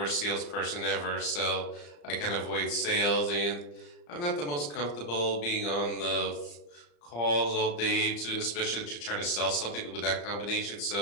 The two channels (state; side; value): late; right; 34 ms